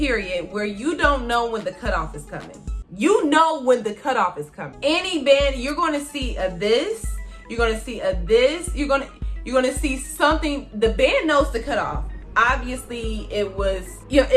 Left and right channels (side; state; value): both; identical; correlation 1.00